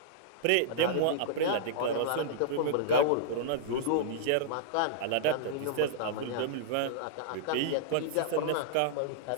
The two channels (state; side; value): different; both; correlation -0.02